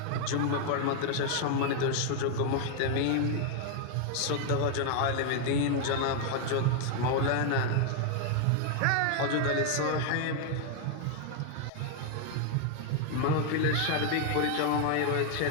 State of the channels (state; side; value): different; both; correlation 0.00